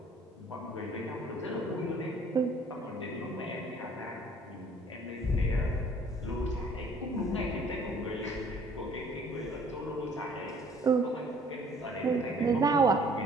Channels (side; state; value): both; normal; correlation 0.56